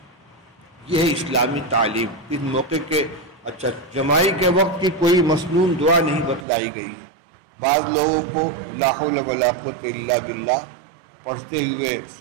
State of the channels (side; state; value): left; drops out; at 6.5 s